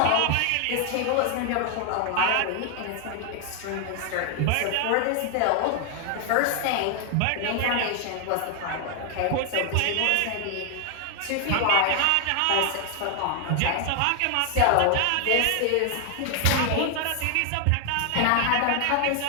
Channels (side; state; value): both; different; correlation 0.00